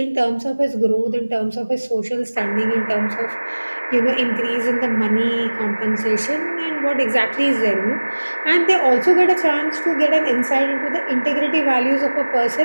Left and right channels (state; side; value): inverted; both; correlation -1.00